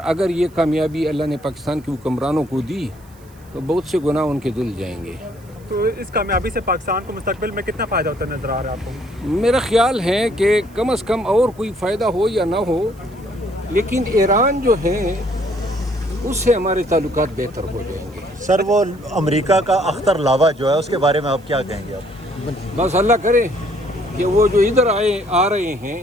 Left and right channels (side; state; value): right; noise; hiss, 29 dB below the sound